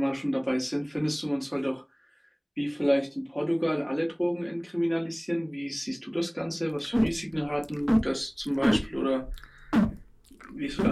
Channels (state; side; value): identical; both; correlation 1.00